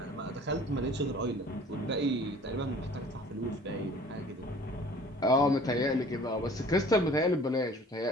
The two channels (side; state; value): both; normal; correlation 0.49